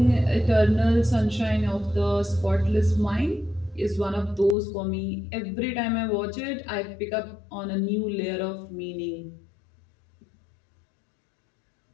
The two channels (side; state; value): right; drops out; at 4.5 s